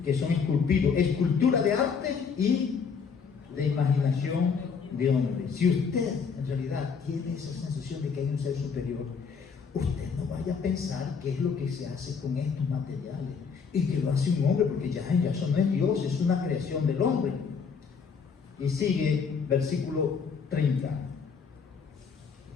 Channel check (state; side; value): quieter; right; 5.9 dB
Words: que son esculpidos, escultura de arte y de imaginación de hombre. Si usted en realidad tiene esa sensación de que hay un ser superior, usted no vaya a pensar qué es lo que se hace con estos materiales y que lo hace un hombre, porque ya eso no es Dios, es una creación del hombre. Y sigue versículo 30.